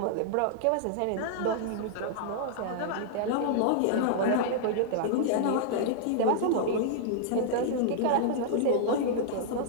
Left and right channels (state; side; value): different; both; correlation -0.01